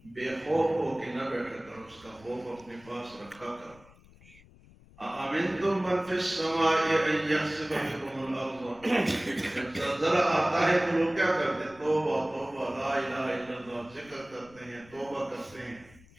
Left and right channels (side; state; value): left; noise; rumble, 25 dB below the sound